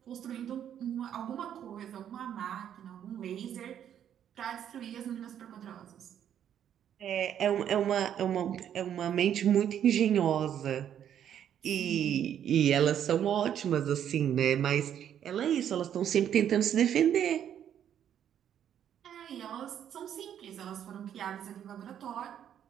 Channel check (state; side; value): quieter; left; 9.7 dB